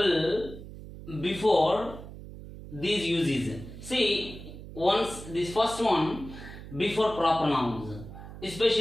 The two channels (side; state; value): right; noise; hum, 13 dB below the sound